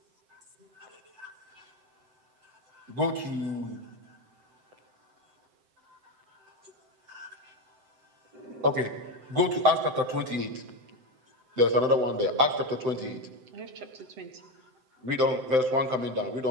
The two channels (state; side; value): late; left; 7.8 ms